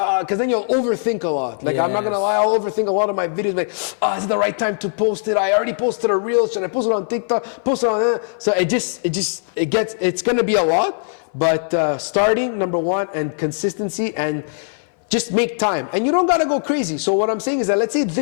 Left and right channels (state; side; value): silent; right; 60 dB below the other